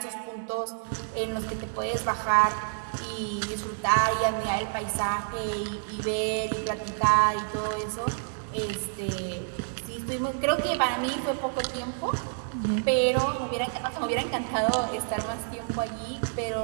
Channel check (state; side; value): silent; left; digital silence